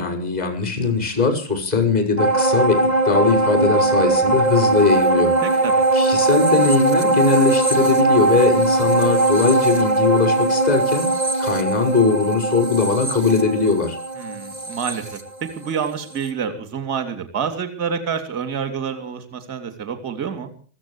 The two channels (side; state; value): left; late; 2.0 ms